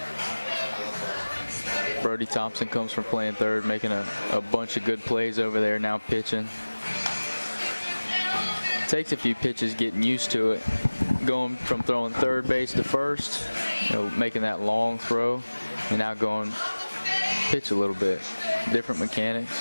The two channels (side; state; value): both; inverted; correlation -1.00